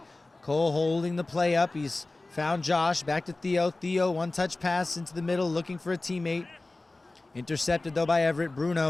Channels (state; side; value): quieter; right; 3.1 dB